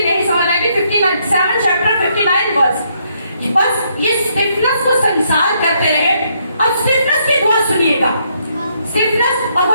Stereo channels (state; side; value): inverted; both; correlation -0.73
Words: नहीं समझ आएगी, 59 7 चैप्टर 59 वर्स। बस ये स्टिफनेस को संसार करते रहे। अब स्टिफनेस की दुआ सुनिएगा, स्टिफनेस, और